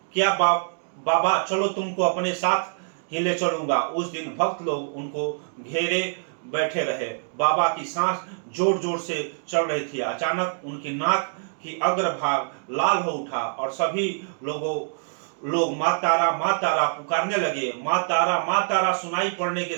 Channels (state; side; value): silent; left; digital silence